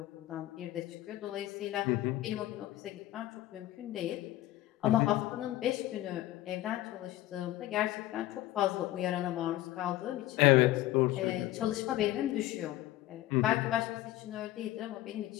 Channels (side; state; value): right; quieter; 15.4 dB